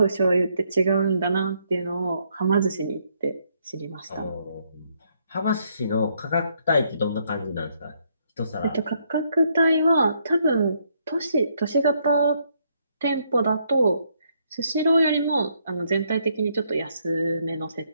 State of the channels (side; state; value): both; inverted; correlation -0.73